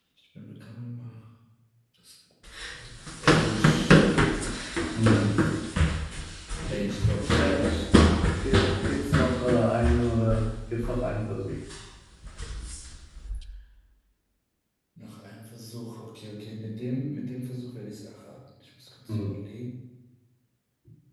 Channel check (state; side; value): identical; both; correlation 1.00